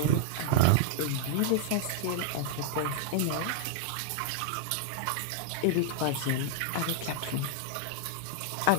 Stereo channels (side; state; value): both; different; correlation -0.01